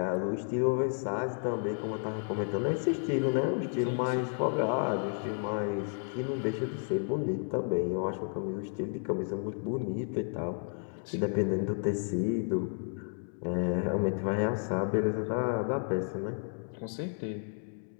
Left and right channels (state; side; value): silent; right; 56 dB below the other